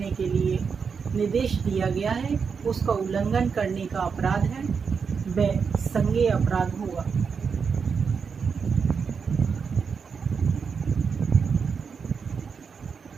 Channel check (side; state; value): left; quieter; 5.9 dB